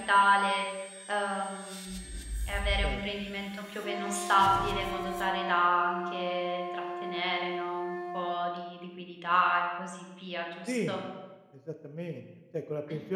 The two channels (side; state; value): both; identical; correlation 1.00